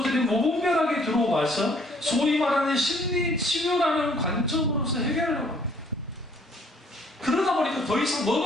무분별하게 들어와서 소위 말하는 심리 치료라는 관점으로서 해결하려고 합니다. 그러다 보니까 더 이상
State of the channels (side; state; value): both; normal; correlation 0.61